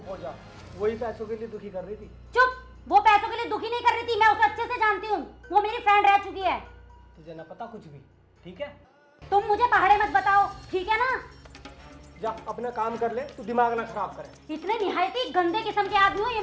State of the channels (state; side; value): identical; both; correlation 1.00